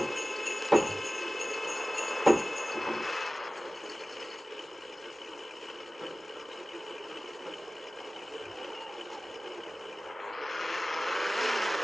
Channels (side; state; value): both; normal; correlation 0.96